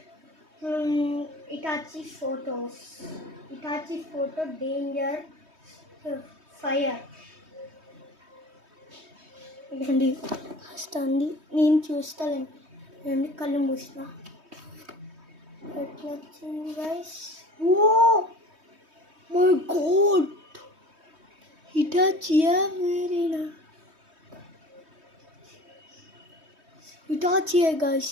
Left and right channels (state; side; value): late; left; 3.2 ms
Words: Itachi photos. Itachi photo danger fire. ఇదండి వస్తుంది, నేను చూస్తానండి. కళ్ళు మూసిన ఎట్లా వచ్చింది గైస్. ఓ మై గాడ్, ఇటాచియా వేరేనా? ఇటాచియా గైస్.